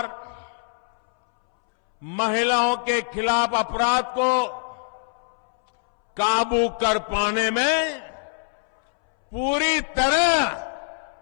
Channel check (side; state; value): right; silent; 63 dB below the other